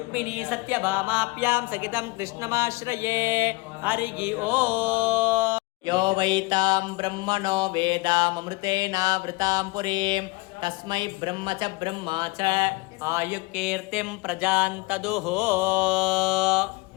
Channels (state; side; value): quieter; right; 24.6 dB